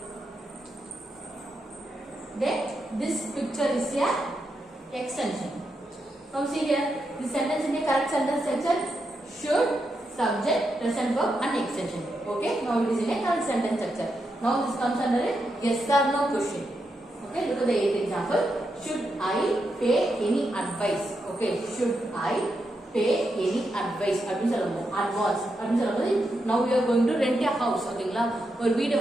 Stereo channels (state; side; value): normal; both; correlation 0.84